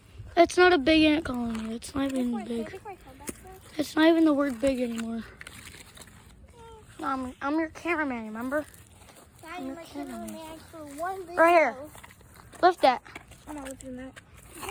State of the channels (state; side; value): identical; both; correlation 1.00